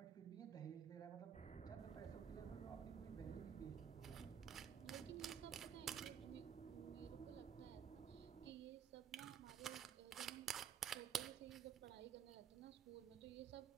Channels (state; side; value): quieter; left; 8.3 dB